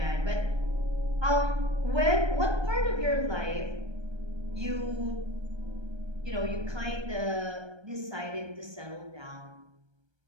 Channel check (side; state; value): left; late; 1.3 ms